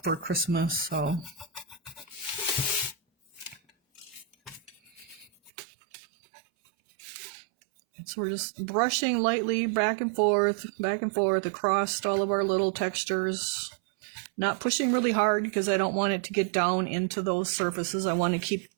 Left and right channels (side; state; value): left; drops out; at 5.5 s